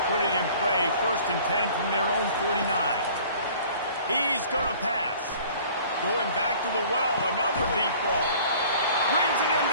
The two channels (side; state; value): both; inverted; correlation -0.50